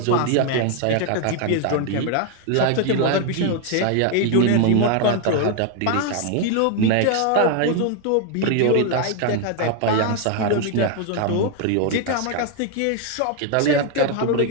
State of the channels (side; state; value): both; different; correlation 0.01